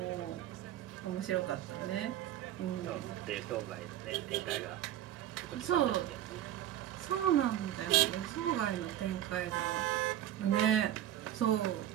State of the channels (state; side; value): quieter; left; 12.2 dB